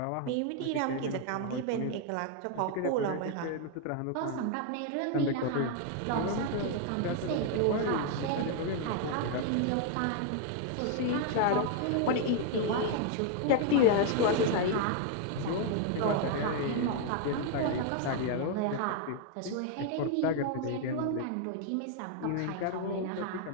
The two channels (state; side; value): different; both; correlation 0.00